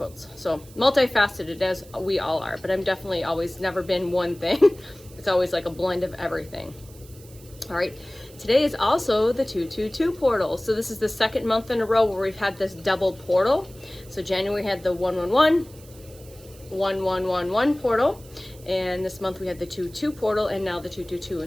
So multifaceted as we all are, but I'm definitely always never been one thing. It's always like a blend of everything. All right, today is also the 222 portal. So this is the second month in a row where we've had this double portal. So January had the 111 portal, and this month we had the 22 portal, and now the 222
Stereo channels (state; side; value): noise; right; hiss, 23 dB below the sound